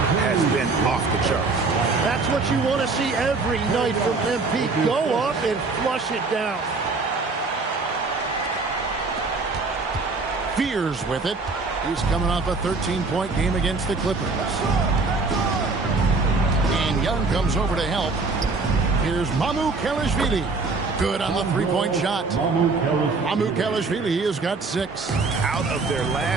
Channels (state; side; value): quieter; left; 3.9 dB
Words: has been off the charts. That's what you want to see every night from MP. Go up and flush it down. Fears with it. He's coming off a 13-point game against the Clippers. And Young comes over to help. Here's Mamukelashvili. Good on the three-point shot. Mamukelashvili has got 6. Out of their